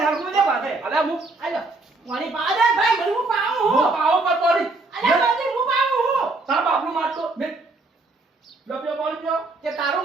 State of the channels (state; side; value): quieter; left; 3.3 dB